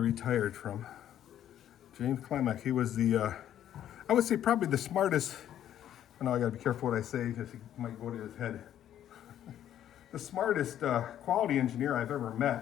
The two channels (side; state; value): right; quieter; 11.0 dB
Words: from. James Klimek, he was I would say probably the smartest, I know I gotta be careful what I say because it might go to his head. The smartest quality engineer I've ever